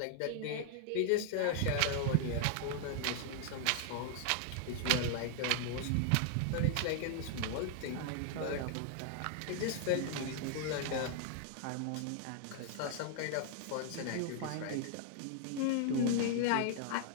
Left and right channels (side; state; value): both; different; correlation -0.01